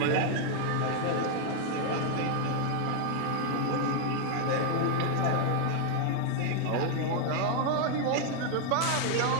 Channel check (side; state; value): both; different; correlation 0.00